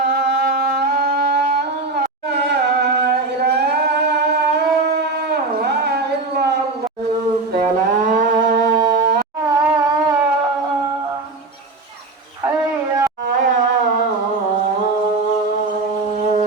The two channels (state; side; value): quieter; left; 3.5 dB